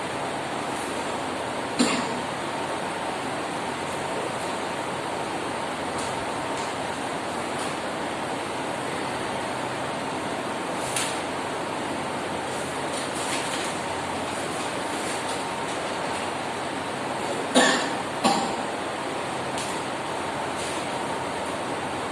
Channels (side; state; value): both; identical; correlation 1.00